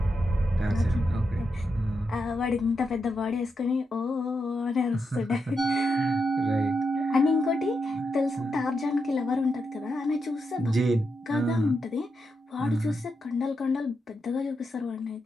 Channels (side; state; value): both; normal; correlation 0.85